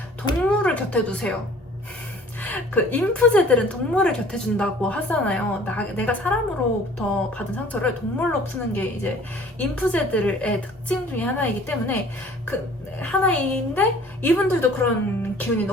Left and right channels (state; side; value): normal; both; correlation 0.51